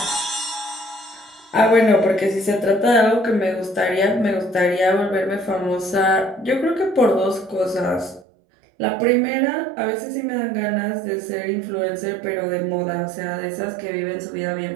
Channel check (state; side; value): drops out; left; at 8.2 s